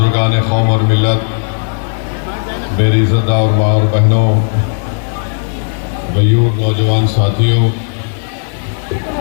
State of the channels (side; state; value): right; silent; digital silence